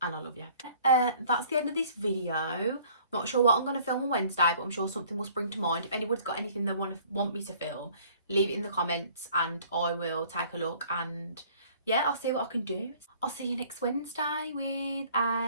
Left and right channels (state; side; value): inverted; both; correlation -0.55